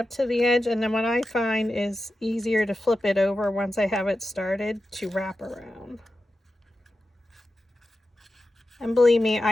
to the edge, and then what I find is easier to flip it over once I have it started to wrap around. And believe me,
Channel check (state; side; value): normal; both; correlation 0.91